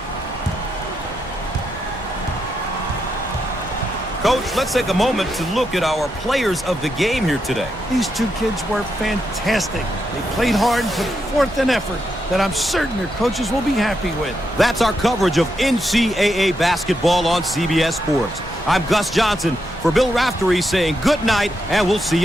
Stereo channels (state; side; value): normal; both; correlation 0.83